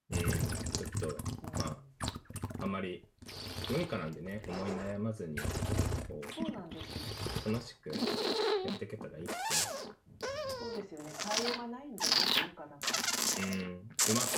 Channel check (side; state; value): both; identical; correlation 1.00